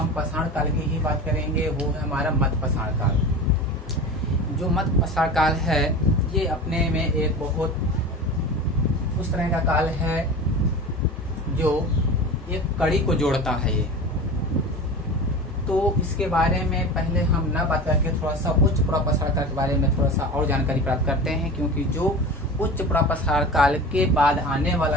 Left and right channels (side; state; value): both; normal; correlation 0.32